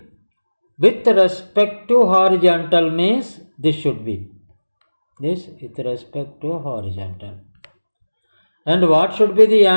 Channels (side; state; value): both; inverted; correlation -1.00